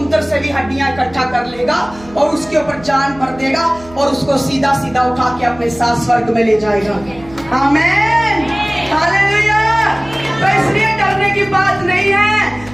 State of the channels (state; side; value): noise; right; hum, 21 dB below the sound